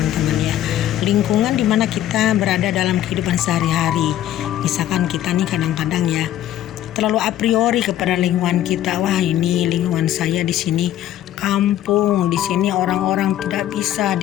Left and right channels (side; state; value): right; quieter; 12.4 dB